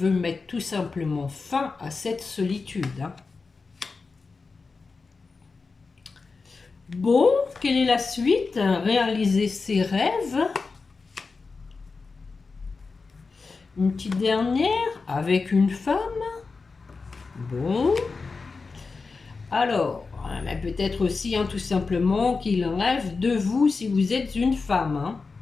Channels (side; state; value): right; quieter; 4.4 dB